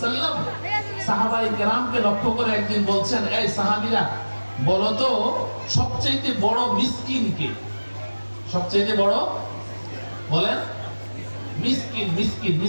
সাহাবায়ে কেরামকে লক্ষ্য করে একদিন বলছেন, এই সাহাবীরা বলো তো সবচেয়ে বড় মিসকিন কে? সবচেয়ে বড় বলেন? মিসকিন। মিসকিন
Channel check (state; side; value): inverted; both; correlation -1.00